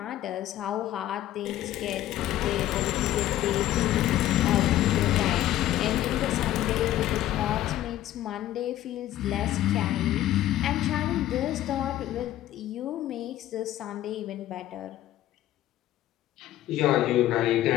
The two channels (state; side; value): quieter; right; 13.6 dB